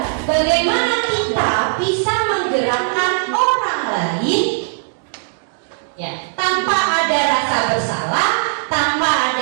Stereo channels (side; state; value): left; silent; 66 dB below the other